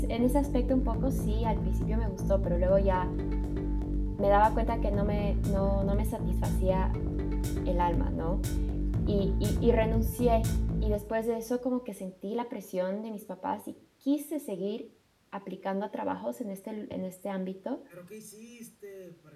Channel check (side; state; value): both; identical; correlation 1.00